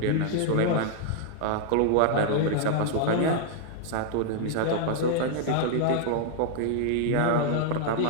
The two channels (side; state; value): both; different; correlation -0.01